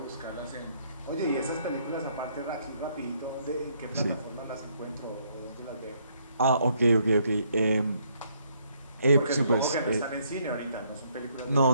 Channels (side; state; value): both; inverted; correlation -0.70